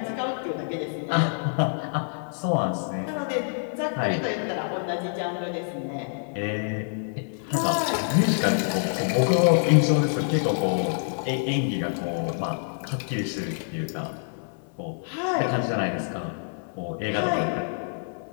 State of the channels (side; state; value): right; silent; 59 dB below the other